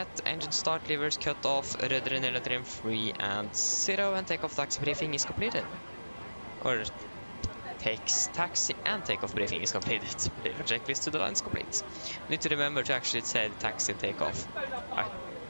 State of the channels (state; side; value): inverted; both; correlation -1.00